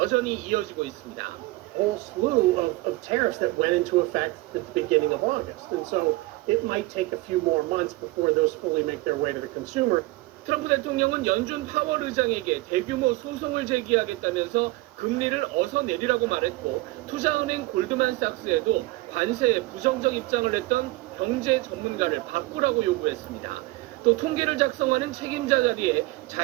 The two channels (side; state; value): left; quieter; 20.3 dB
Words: 이어지고 있습니다. whole slew of tariffs that went into effect at the beginning of August. And so it might take a few more months before those fully make their way to the consumer. 트럼프 대통령은 연준 파월 의장에게 대규모 소송을 제기하겠다면서 금리를 어서 내리라고 말했고 투자은행 골드만삭스에도 관세에 부정적 입장을 냈던 경제 전문가를 바꾸라고 요구했습니다. 또 통계를 작성하는 책임자 자리에